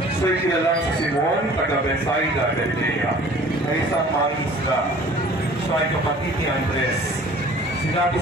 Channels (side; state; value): both; normal; correlation 0.49